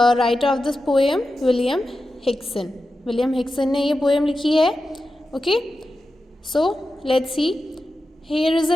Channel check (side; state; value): both; normal; correlation 0.91